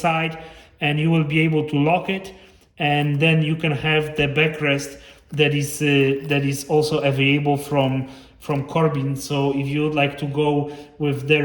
and you will be able to lock it, and then you can have the backrest that is also available from Corbin. So if you would like to go with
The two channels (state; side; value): identical; both; correlation 1.00